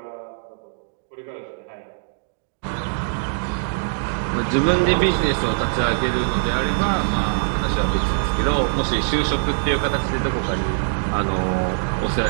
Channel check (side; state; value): left; silent; 64 dB below the other